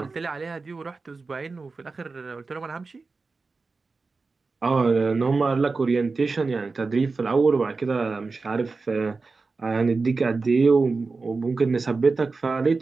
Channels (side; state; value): left; quieter; 4.1 dB